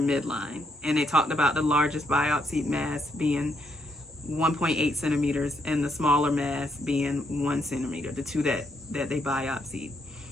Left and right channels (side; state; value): both; normal; correlation 0.75